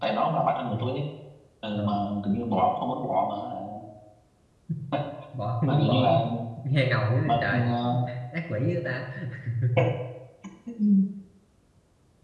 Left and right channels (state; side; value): identical; both; correlation 1.00